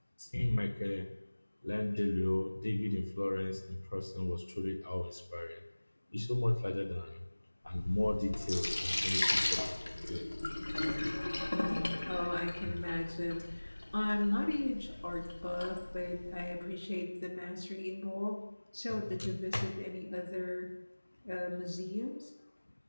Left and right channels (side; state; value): both; inverted; correlation -1.00